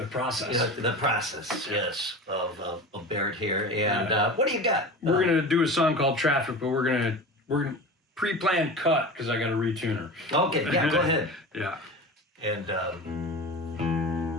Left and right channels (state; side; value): normal; both; correlation 0.32